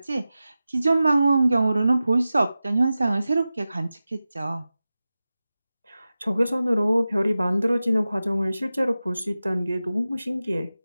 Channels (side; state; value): both; inverted; correlation -0.95